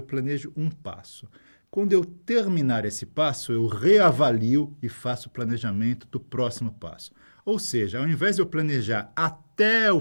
planejo um passo. Quando eu terminar esse passo, eu reavalio e faço o planejamento do próximo passo. Ou seja, ao invés de eu planejar até o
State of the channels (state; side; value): inverted; both; correlation -1.00